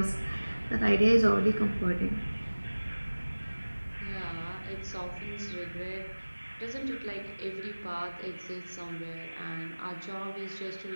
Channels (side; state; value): both; inverted; correlation -1.00